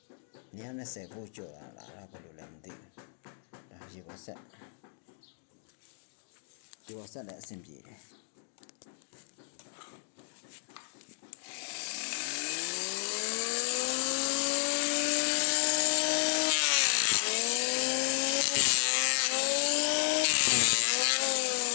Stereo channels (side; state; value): right; silent; digital silence